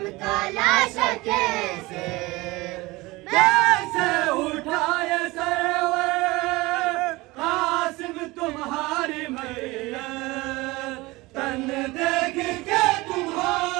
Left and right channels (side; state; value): left; quieter; 21.6 dB